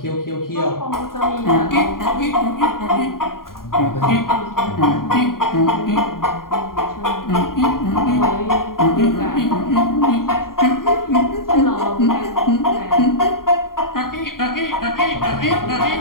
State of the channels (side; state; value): right; late; 0.91 ms